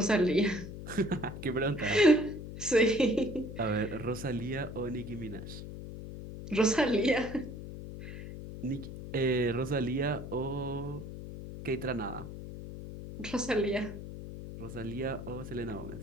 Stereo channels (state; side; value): noise; left; hum, 10 dB below the sound